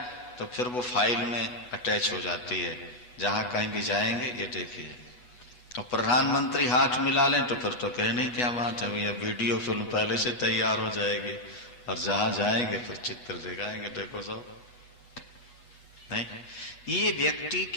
तो फिर वो फाइल में अटैच हो जाती है। जहां कहीं भी जाएंगे ये देखिए। और प्रधानमंत्री हाथ मिला लें तो फिर तो कहने क्या बात है भैया, वीडियो फिल्म पहले से तैयार हो जाएगी, और जहां जाएंगे तो चित्र दिखाएंगे, देखो सब। नहीं, ये व्यक्ति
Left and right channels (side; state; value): right; late; 8.1 ms